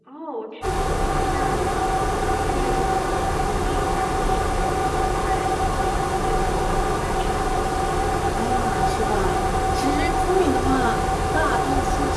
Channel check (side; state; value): both; identical; correlation 1.00